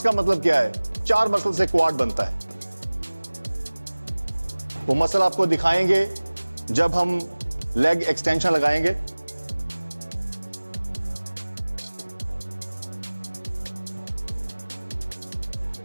का मतलब क्या है? 4 मसल से क्वाड बनता है। वो मसल आपको दिखाएंगे जब हम लेग एक्सटेंशन लगाएंगे।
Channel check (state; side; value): inverted; both; correlation -1.00